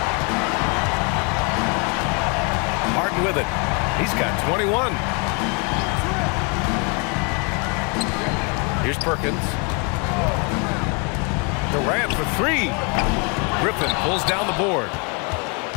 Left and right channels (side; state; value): right; quieter; 34.3 dB